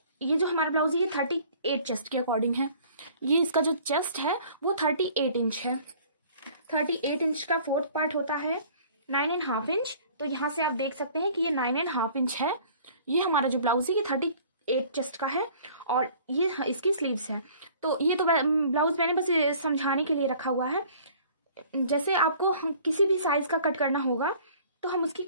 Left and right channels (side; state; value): both; inverted; correlation -0.52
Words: ये जो हमारा ब्लाउज है ये 38 चेस्ट के अकॉर्डिंग है। ये इसका जो चेस्ट है वो 38 इंच है। 38 इंच का फोर्थ पार्ट होता है 9.5 इंच। तो यहाँ से आप देख सकते हैं कि ये 9.5 इंच है। ये हमारा जो ब्लाउज है ये 38 चेस्ट का है और ये इसकी स्लीव्स है। तो ये तो ब्लाउज मैंने बस समझाने के लिए रखा हुआ है। जैसे आपको किसी भी साइज का कट करना होगा तो हम उसकी